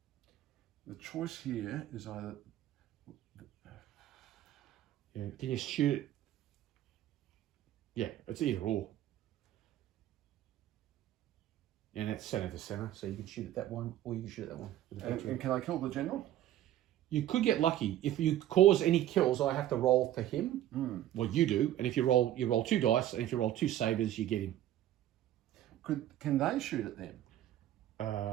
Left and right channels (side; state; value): left; quieter; 12.7 dB